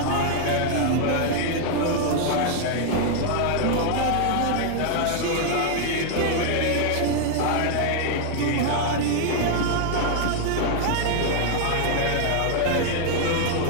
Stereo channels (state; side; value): different; both; correlation 0.00